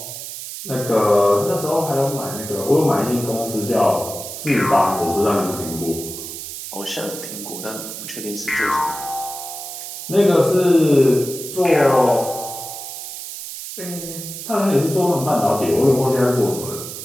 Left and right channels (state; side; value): noise; right; hiss, 9 dB below the sound